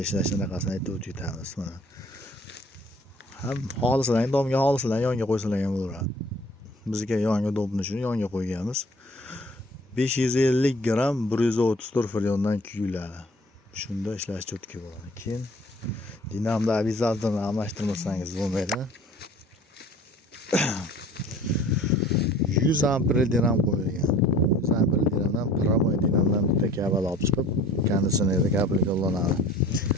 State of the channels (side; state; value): both; normal; correlation 0.50